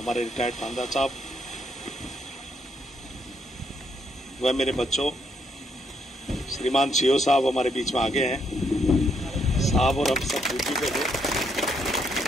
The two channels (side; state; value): both; normal; correlation 0.74